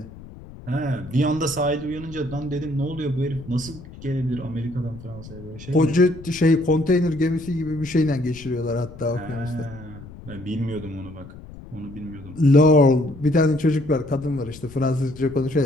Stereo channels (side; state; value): left; noise; rumble, 16 dB below the sound